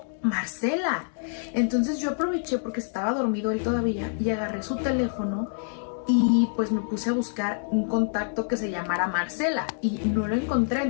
Marcela. Entonces yo aproveché porque estaba dormido él todavía y agarré su teléfono y pues me puse a buscar un contacto que se llamara Marcela y no lo encontré.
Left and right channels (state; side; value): silent; right; digital silence